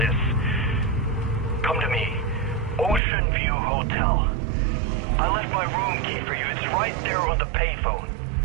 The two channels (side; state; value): left; drops out; at 3.0 s